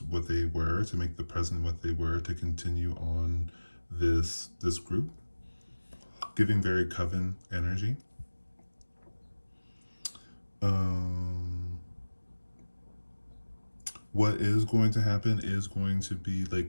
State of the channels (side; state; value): both; inverted; correlation -1.00